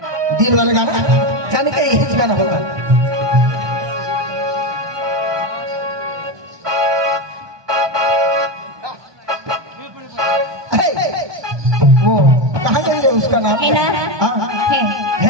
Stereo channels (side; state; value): left; late; 1.2 ms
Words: दिल वाला गाना जाने का यही गाना होगा. वो कहाँ गई उसका नाम है ना? है